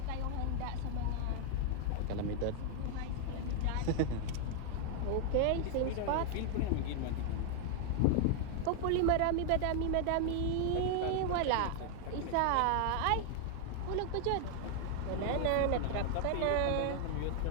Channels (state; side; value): different; both; correlation 0.00